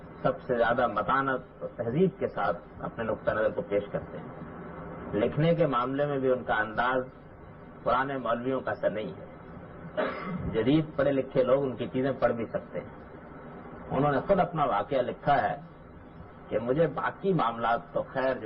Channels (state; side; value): identical; both; correlation 1.00